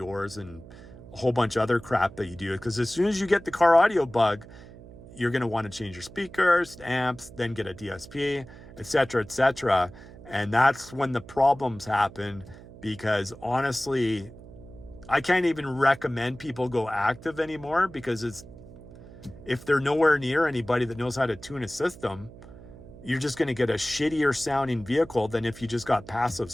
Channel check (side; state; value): right; noise; hum, 18 dB below the sound